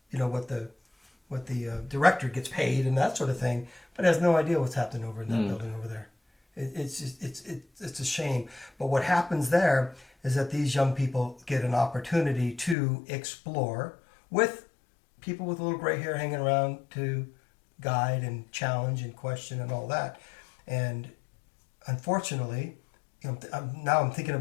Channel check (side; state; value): right; drops out; at 12.8 s